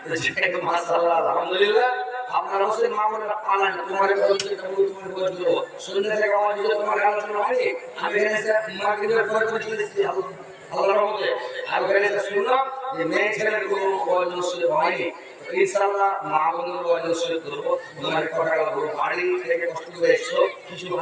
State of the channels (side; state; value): both; identical; correlation 1.00